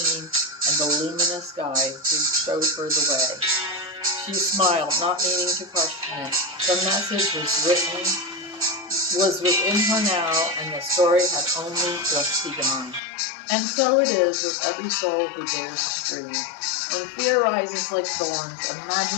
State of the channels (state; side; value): drops out; right; at 13.0 s